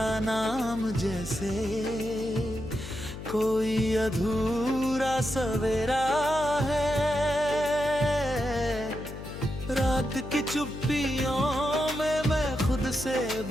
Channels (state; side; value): noise; left; hum, 11 dB below the sound